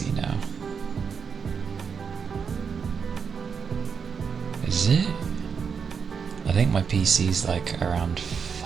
now? Is it? I think my PC's like around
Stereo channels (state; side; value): quieter; left; 6.3 dB